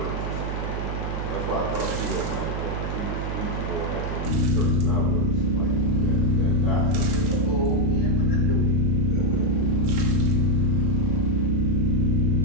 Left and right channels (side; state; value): right; noise; hum, 4 dB below the sound